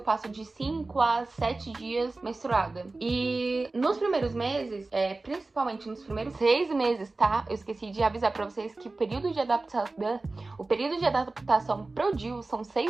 de 5 a 7 dias menstruada. E nos primeiros meses, principalmente nos primeiros 6 meses, tá? Eu esqueci de avisar pra vocês que o período de adaptação pro DIU são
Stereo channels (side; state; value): left; quieter; 3.3 dB